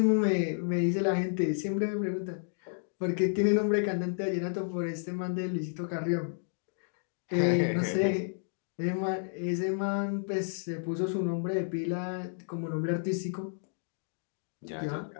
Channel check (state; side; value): silent; right; digital silence